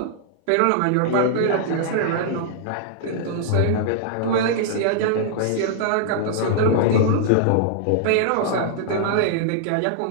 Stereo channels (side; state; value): both; different; correlation -0.01